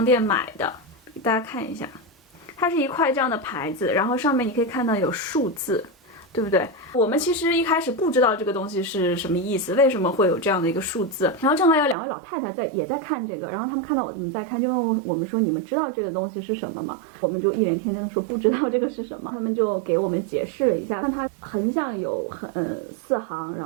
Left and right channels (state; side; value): drops out; left; at 12.0 s